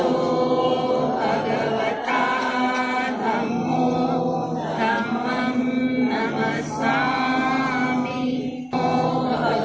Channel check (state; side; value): identical; both; correlation 1.00